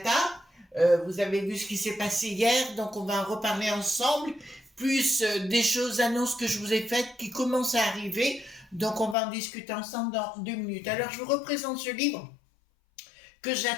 Vous avez vu ce qui s'est passé hier, donc on va en reparler ensemble, plus des choses, annonces que je vous ai faites qui commencent à arriver, donc on va en discuter ensemble dans 2 minutes. Alors je vous représente ce livre que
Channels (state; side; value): drops out; right; at 9.2 s